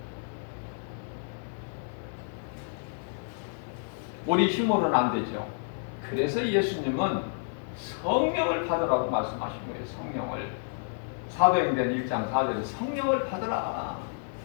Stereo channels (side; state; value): right; silent; 58 dB below the other